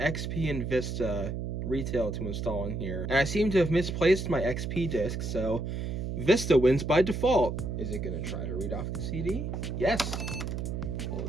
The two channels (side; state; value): right; noise; hum, 3 dB below the sound